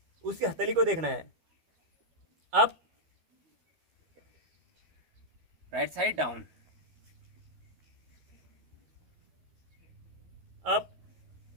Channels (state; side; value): late; left; 12 ms